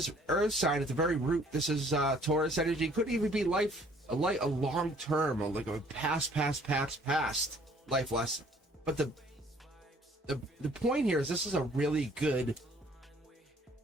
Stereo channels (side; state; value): both; normal; correlation 0.58